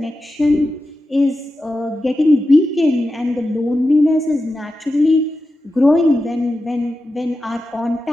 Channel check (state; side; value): normal; both; correlation 0.91